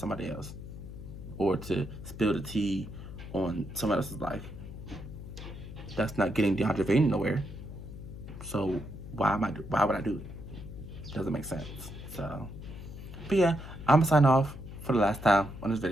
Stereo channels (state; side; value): noise; left; hum, 11 dB below the sound